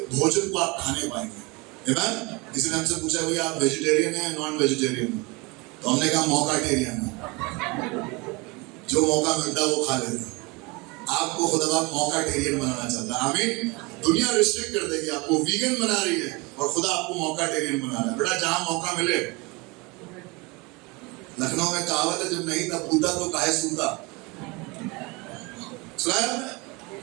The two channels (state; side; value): quieter; left; 26.3 dB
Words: भोजन को आप खाने पाएंगे। आमीन। किसी ने हमसे पूछा भैया आप वेजिटेरियन हैं नॉन वेजिटेरियन? तो हमने कहा मौकाटेरियन है, जो मौका मिलता है वो खा लेते हैं। आपको खुदा मौकाटेरियन बनाना चाहता है। आमीन। दुनिया रिस्ट्रिक्ट कर देगी आपको, वीगन बना रही है, और खुदा आपको मौकाटेरियन बना रहा है। बेटा जहां मौका मिले, लखनऊ में कहावत है, जब नहीं था पूता तो काहे सूता। सुना है?